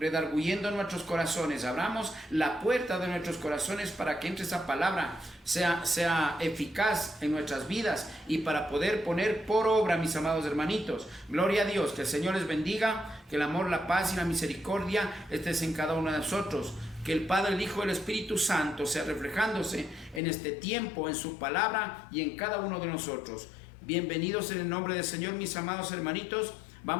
nuestros corazones. Abramos la puerta de nuestros corazones para que entre esa palabra, sea eficaz en nuestras vidas y para poder poner por obra, mis amados hermanitos. Gloria a Dios, que el Señor les bendiga, que el amor, la paz y la misericordia estés en cada uno de nosotros. Que el Padre, el Hijo y el Espíritu Santo sea reflejándose en este tiempo, en su palabra y en cada uno de nosotros. Bienvenidos en el nombre del Señor, mis amados hermanitos.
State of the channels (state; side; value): drops out; right; at 20.2 s